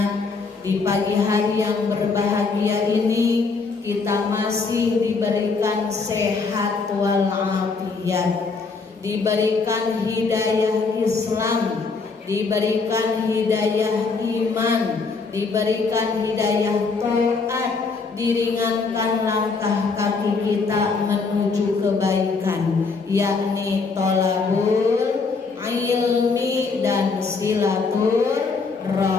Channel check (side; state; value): right; quieter; 4.5 dB